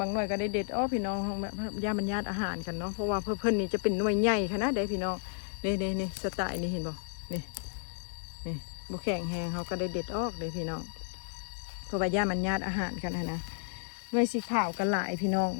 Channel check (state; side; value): silent; right; digital silence